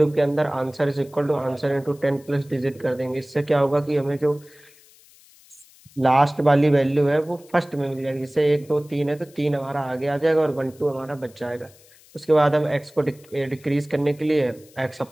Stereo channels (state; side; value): noise; left; hiss, 27 dB below the sound